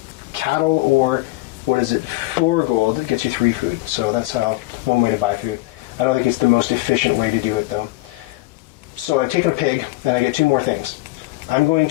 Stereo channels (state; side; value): quieter; right; 20.3 dB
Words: cattle or 4 gold, it gets you 3 food. So that's one way to buy food. I don't think it's the most efficient way to do it though. So I've taken a pig and I get 2 more things. I'm going